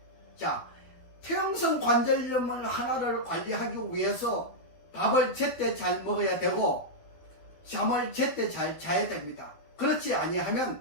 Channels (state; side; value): late; right; 12 ms